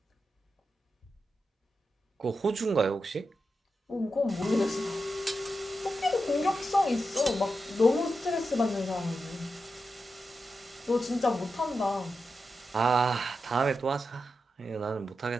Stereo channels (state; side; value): normal; both; correlation 0.88